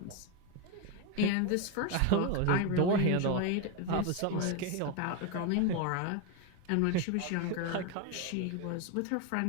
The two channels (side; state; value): both; different; correlation 0.02